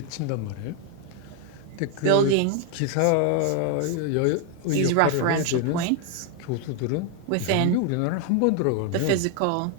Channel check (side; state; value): both; different; correlation 0.00